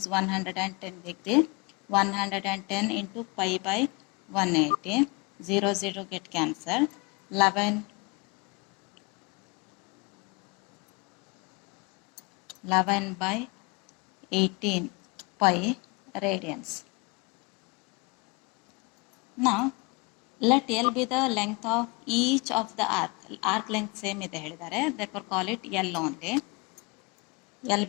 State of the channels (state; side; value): quieter; right; 29.0 dB